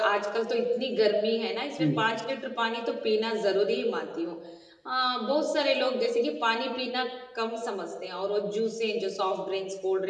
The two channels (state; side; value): identical; both; correlation 1.00